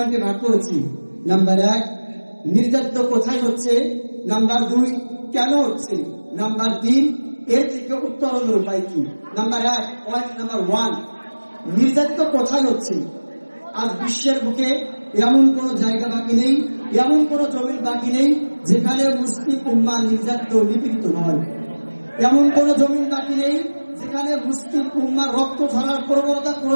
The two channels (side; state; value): both; inverted; correlation -1.00